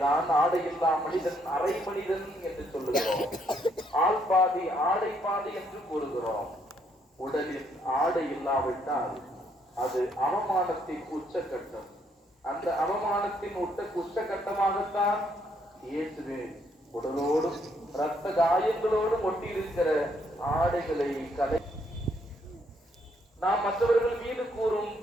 ஆடையில்லா மனிதன் அரை மனிதன் என்று சொல்லுகிறோம். ஆள் பாதி ஆடை பாதி என்று கூறுகிறோம். உடலில் ஆடை இல்லாவிட்டால் அது அவமானத்தின் உச்சக்கட்டம். அந்த அவமானத்தின் உச்சக்கட்டமாகத்தான் இயேசுவின் உடலோடும் இரத்த காயங்களோடும் ஒட்டியிருக்கிற ஆடைகளை கலை. நாம் மற்றவர்கள் மீது கூறும்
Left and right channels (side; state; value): both; normal; correlation 0.71